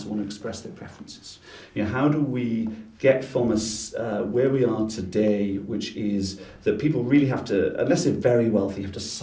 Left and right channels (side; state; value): both; identical; correlation 1.00